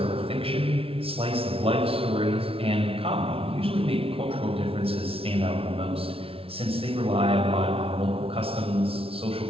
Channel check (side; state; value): left; late; 0.27 ms